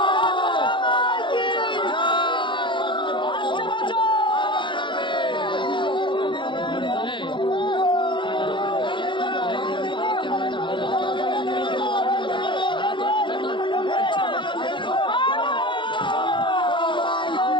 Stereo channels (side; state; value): right; late; 0.23 ms